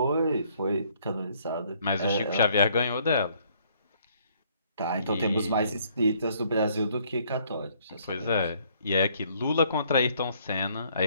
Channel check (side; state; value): both; inverted; correlation -0.64